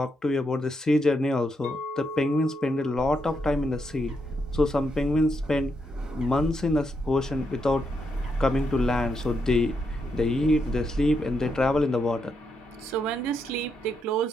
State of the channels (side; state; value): both; normal; correlation 0.80